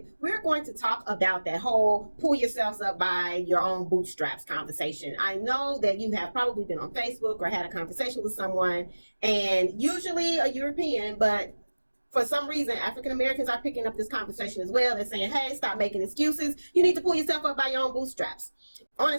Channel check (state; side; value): inverted; both; correlation -1.00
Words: We're going to talk about that whole pull yourselves up by your own bootstraps conversation. I know that you have probably been on Facebook or had a conversation with someone, and usually a European, but for some reason, African Americans are picking up this conversation as well. They're saying, hey, stop making excuses. You need to pull yourself up by your own bootstraps. On